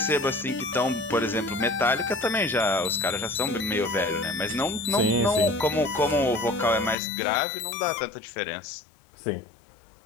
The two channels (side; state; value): right; drops out; at 7.0 s